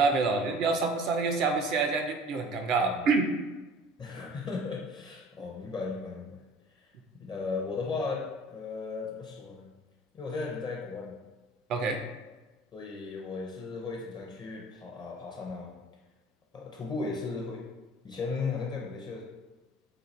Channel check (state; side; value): normal; both; correlation 0.47